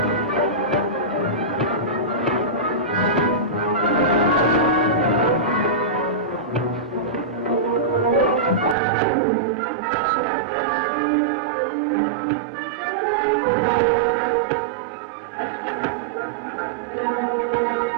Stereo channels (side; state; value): left; drops out; at 8.8 s